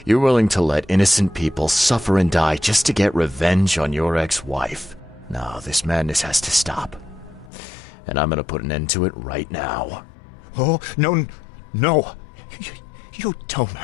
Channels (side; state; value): right; drops out; at 7.5 s